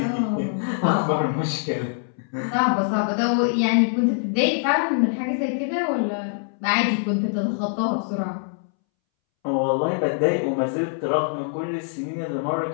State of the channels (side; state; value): right; silent; 63 dB below the other